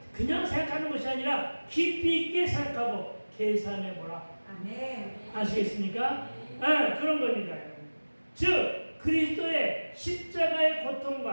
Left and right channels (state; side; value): inverted; both; correlation -1.00